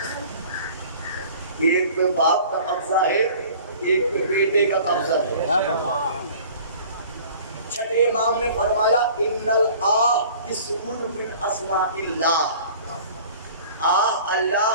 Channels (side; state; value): both; inverted; correlation -0.46